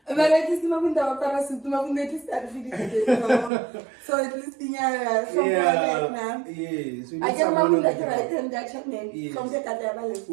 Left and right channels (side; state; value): left; drops out; at 3.5 s